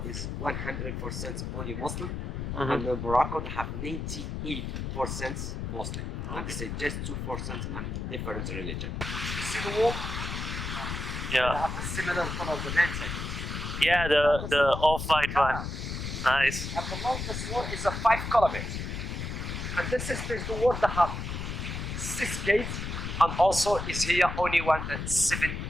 100% only Muslim, and Morocco they have 98% Muslim, and they say just 2% and different religion. You see the wall? They Yeah. have the similar color of the mountain. Yeah. The off-white one. Nice. And the longest wall is a 5 kilometers. And this is the wall that have 6 gates, and also is here only one that 7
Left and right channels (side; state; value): left; noise; rumble, 4 dB below the sound